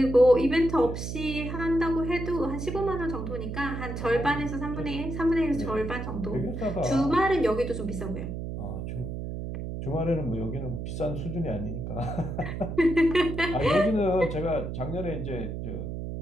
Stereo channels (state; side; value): noise; right; hum, 5 dB below the sound